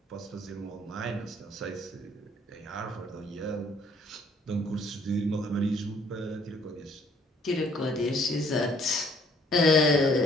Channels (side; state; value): both; normal; correlation 0.61